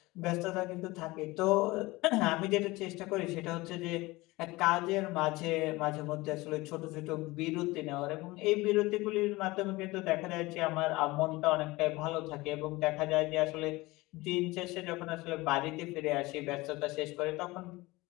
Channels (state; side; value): quieter; right; 21.1 dB